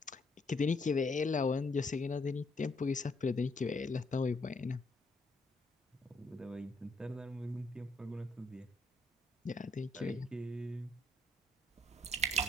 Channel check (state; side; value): normal; both; correlation 0.71